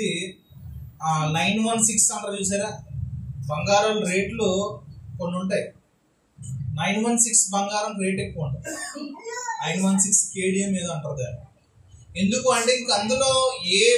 916 అంటారు చూసారా? బంగారం రేట్లు కొన్ని ఉంటాయి. 916 బంగారం రేట్ ఎక్కువ ఉంటుంది. 916 కేడిఎం ఏదో అంటారు దాన్ని. ఎందుకు అంటే ఇంక అందులో ఏ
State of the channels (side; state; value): both; identical; correlation 1.00